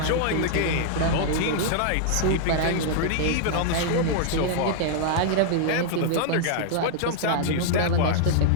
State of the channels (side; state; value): both; different; correlation -0.01